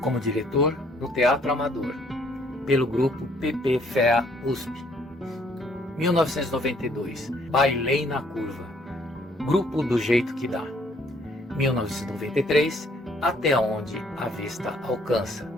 Como diretor, no Teatro Amador, pelo grupo PP FEA USP. 1992, Bailei na Curva, Grupo do Jeito que Dá. 1993, Até Onde a Vista Alcança,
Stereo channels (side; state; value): both; normal; correlation 0.64